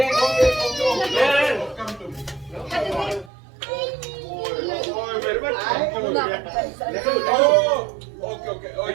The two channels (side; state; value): left; drops out; at 3.3 s